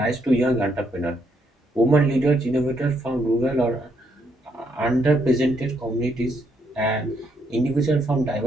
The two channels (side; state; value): both; normal; correlation 0.75